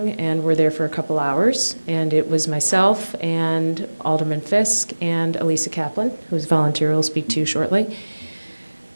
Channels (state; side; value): inverted; both; correlation -1.00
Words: and were there for a couple hours, and it was myself and Alderman Fisk and Elisa Kaplan, whose volunteer will speak to you shortly.